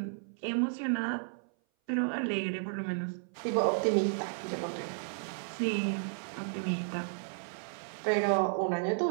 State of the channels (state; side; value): silent; left; 56 dB below the other